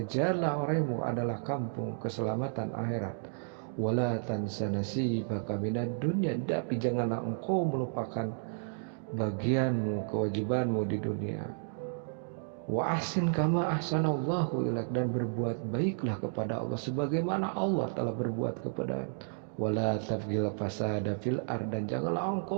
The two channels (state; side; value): silent; left; digital silence